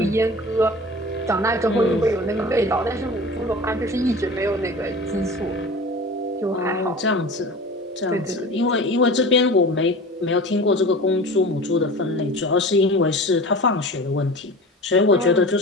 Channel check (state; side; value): normal; both; correlation 0.36